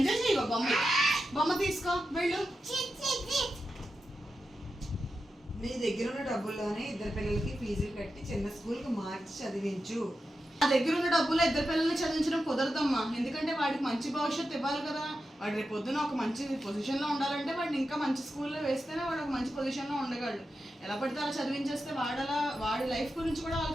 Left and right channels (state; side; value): normal; both; correlation 0.90